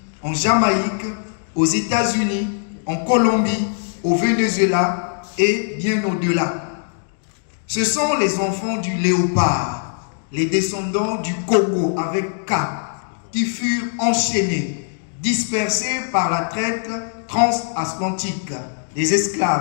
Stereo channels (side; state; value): right; silent; digital silence